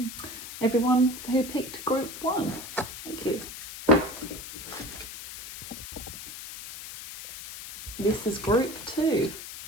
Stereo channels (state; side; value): noise; left; hiss, 11 dB below the sound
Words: everyone who picked group 1. Thank you. This is group 2.